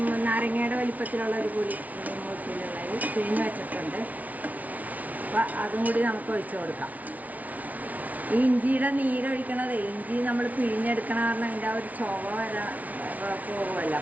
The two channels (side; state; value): left; late; 0.073 ms